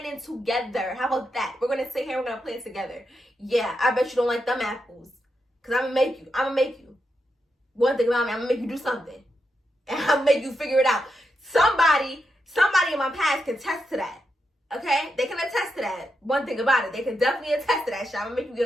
together. How about that? We're gonna sit here, we're gonna plan together. Yeah, I bet you don't like them apples, because I'm gonna make you. One thing about me, I'm gonna make you do something. And I'm gonna make you figure it out. Somebody in my past can attest to that. Okay? They can attest to that. One thing about it, they can definitely attest to that shit. I'm gonna make you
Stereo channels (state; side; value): normal; both; correlation 0.85